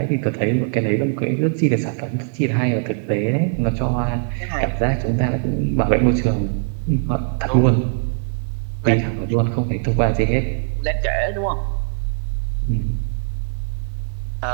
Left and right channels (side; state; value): left; silent; 58 dB below the other